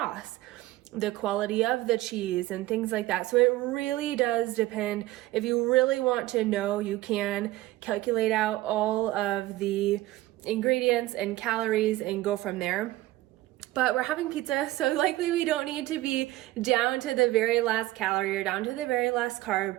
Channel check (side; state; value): left; quieter; 17.1 dB